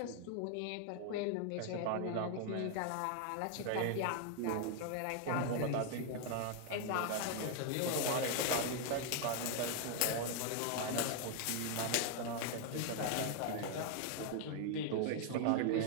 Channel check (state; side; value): different; both; correlation 0.00